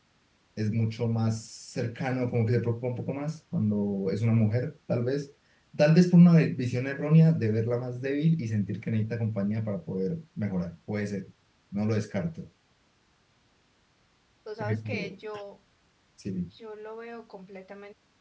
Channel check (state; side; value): identical; both; correlation 1.00